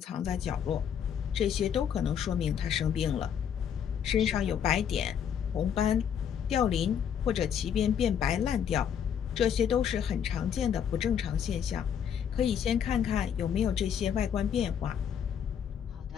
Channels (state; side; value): quieter; right; 8.4 dB